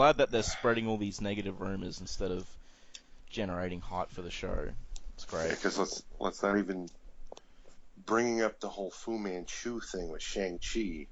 that they're spreading all these negative rumors instead of generating hype for the show. It's great. Yeah, because let's not even bringing up the whole Fu Manchu thing with Shang-Chi.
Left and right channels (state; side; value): identical; both; correlation 1.00